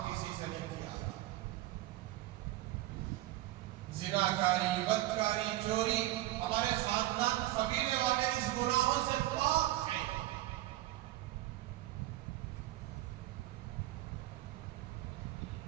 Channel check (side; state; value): left; quieter; 15.9 dB